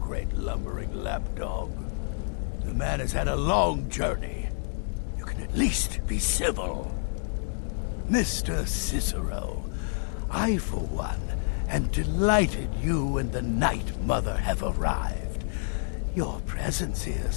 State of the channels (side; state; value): right; silent; digital silence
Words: lumbering lapdog. The man has had a long journey. You can at least be civil. Mr. Cicero, I, for one, am delighted you and the Night Mother have arrived. Your presence here